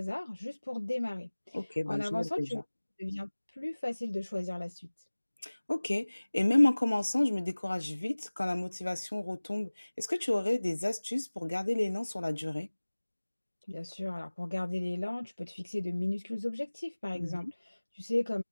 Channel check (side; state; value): both; inverted; correlation -1.00